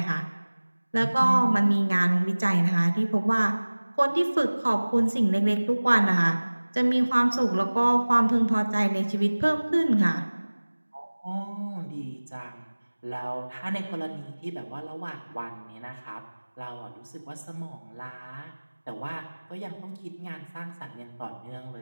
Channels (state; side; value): inverted; both; correlation -1.00